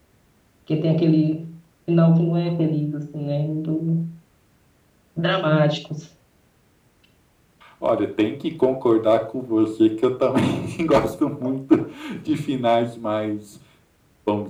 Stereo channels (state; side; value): identical; both; correlation 1.00